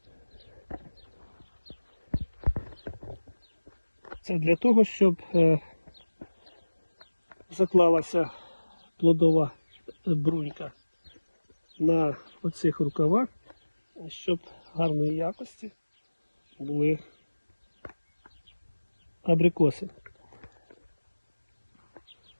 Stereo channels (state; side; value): inverted; both; correlation -1.00